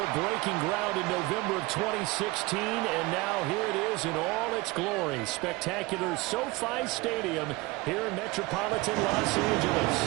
breaking ground in November of 2016, and now here it is in all its glory. Spectacular SoFi Stadium here in metropolitan Los Angeles.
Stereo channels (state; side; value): quieter; left; 22.3 dB